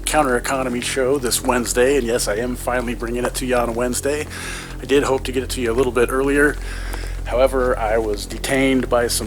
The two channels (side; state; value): both; identical; correlation 1.00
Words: Counter Economy show this Wednesday. And yes, I am finally bringing it to you on a Wednesday. I did hope to get it to you a little bit earlier. However, I was detained by